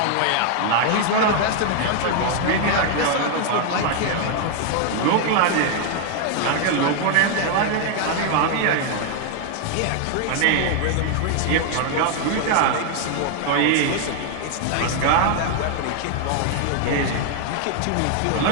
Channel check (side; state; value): both; different; correlation 0.00